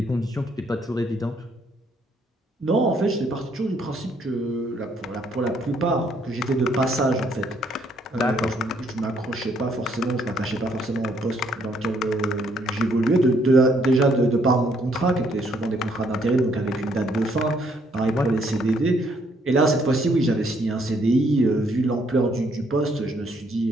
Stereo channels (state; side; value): normal; both; correlation 0.68